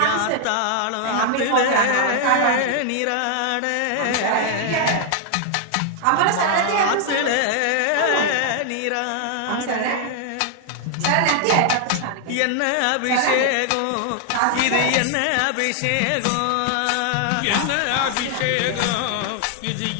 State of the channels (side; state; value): both; different; correlation 0.00